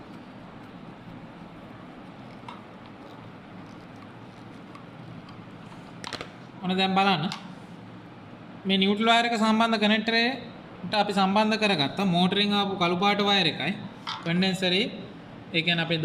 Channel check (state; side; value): identical; both; correlation 1.00